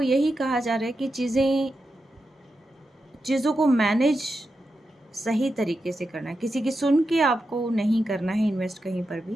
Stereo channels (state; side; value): normal; both; correlation 0.89